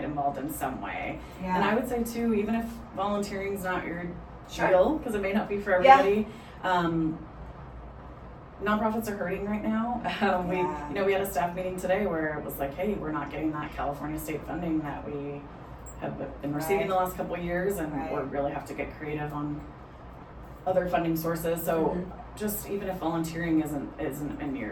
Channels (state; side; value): identical; both; correlation 1.00